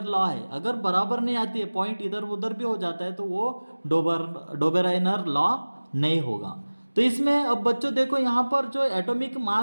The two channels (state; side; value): inverted; both; correlation -1.00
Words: लॉ है, अगर बराबर नहीं आती है, पॉइंट इधर उधर भी हो जाता है, तो वो डोबेराइनर लॉ नहीं होगा। तो इसमें अब बच्चों देखो यहाँ पर जो एटॉमिक